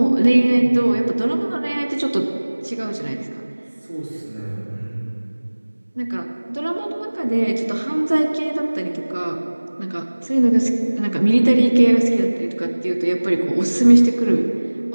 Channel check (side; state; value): both; inverted; correlation -1.00